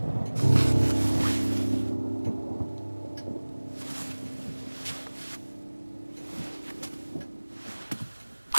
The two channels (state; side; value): inverted; both; correlation -1.00